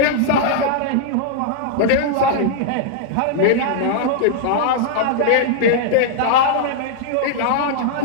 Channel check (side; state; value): both; different; correlation -0.01